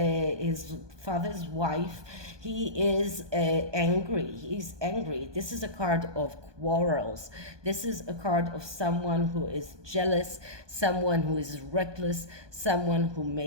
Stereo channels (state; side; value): late; left; 1.2 ms